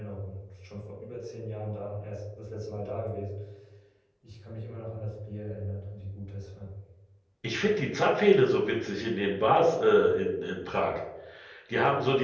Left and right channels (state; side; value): identical; both; correlation 1.00